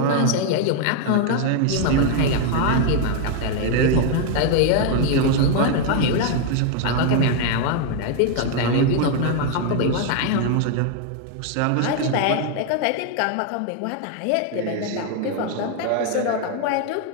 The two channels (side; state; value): both; different; correlation 0.00